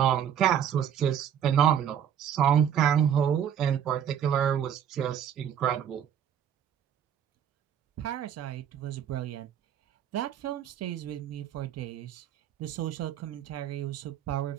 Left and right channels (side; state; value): left; quieter; 9.2 dB